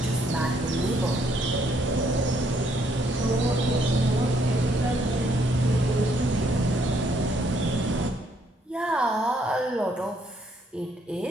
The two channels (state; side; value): normal; both; correlation 0.69